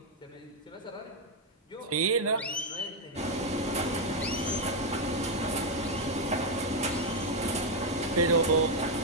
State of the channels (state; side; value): normal; both; correlation 0.02